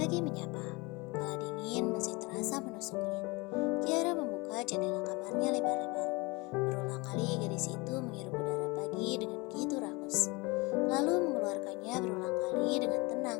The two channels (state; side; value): quieter; right; 25.7 dB